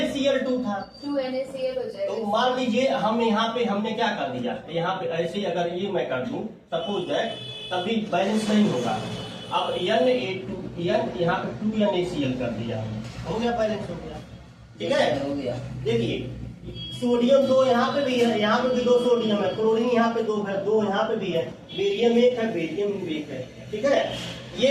था, 2NaCl हो जाएगा। तो मान लीजिए हम यहाँ पे हमने क्या कर दिया, यहाँ पे ऐसे अगर ये मैं कर दूं सपोज दैट, तभी बैलेंस नहीं होगा। अब Na2 यहाँ पे 2NaCl कर दिया, हो गया, बैलेंस हो गया, ठीक है। हो गया। देखिए सोडियम 2 यहाँ पे भी है, यहाँ पे भी 2 सोडियम है, क्लोरीन यहाँ पे 2 है, 2 यहाँ पे भी है, बेरियम 1 है, बेरियम 1 है, ठीक है।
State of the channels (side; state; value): both; identical; correlation 1.00